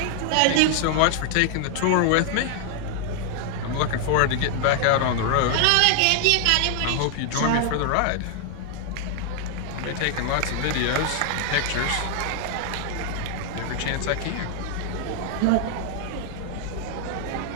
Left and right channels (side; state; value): both; different; correlation 0.00